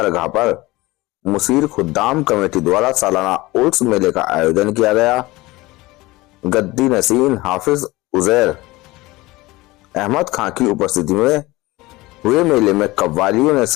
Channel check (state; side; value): quieter; right; 20.5 dB